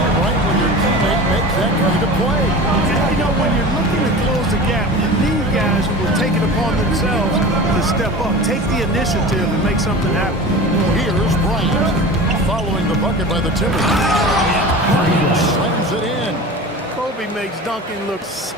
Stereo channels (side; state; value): both; normal; correlation 0.34